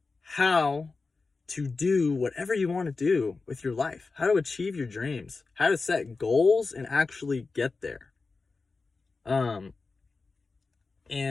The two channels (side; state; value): right; quieter; 4.1 dB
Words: how to do whatever you want to do with your life, how to achieve your dreams, how to set goals and actually get there. And